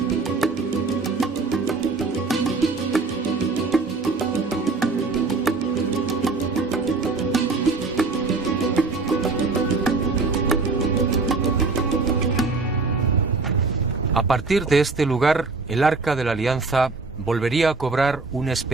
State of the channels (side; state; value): left; quieter; 4.0 dB